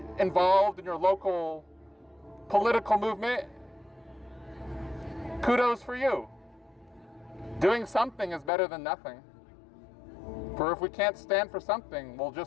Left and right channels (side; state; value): right; drops out; at 8.5 s